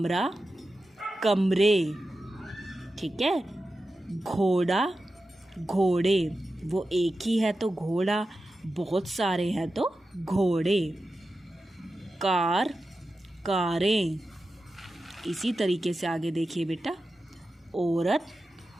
कमरे। ठीक है। घोड़ा, घोड़े। वो एक ही है तो घोड़ा, बहुत सारे हैं तो घोड़े। कार, कारें। इसी तरीके से आगे देखिए बेटा, औरत,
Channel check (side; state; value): both; normal; correlation 0.92